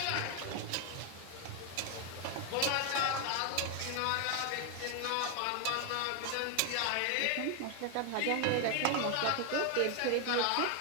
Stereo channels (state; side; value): different; both; correlation 0.00